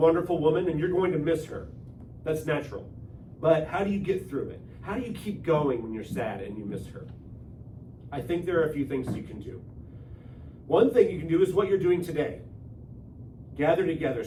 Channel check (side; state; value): both; identical; correlation 1.00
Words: woman, and you're going to miss her. That's natural. But how do you get through it? How do you keep going when you're sad and you miss her? I think there are a few things you can do. One thing you can do is what you're doing today. Gather together,